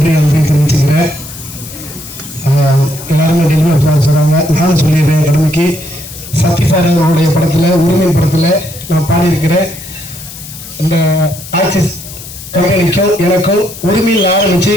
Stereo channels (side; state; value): left; noise; hiss, 14 dB below the sound